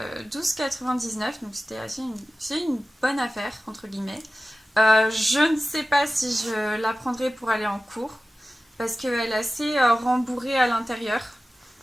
12,99 €. Donc c'est une bonne affaire, entre guillemets. Je ne sais pas si je la prendrai pour aller en cours, parce qu'elle est assez rembourrée à l'intérieur.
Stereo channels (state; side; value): normal; both; correlation 0.95